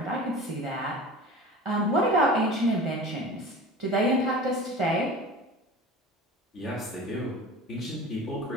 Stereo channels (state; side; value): normal; both; correlation 0.36